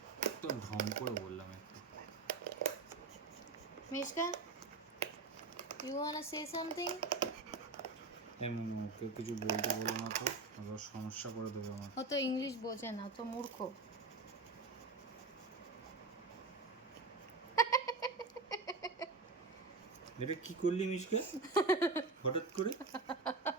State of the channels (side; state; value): left; quieter; 3.8 dB